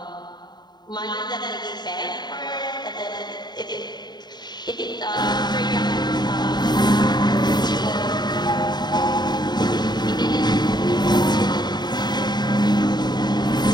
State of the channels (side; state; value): right; late; 0.21 ms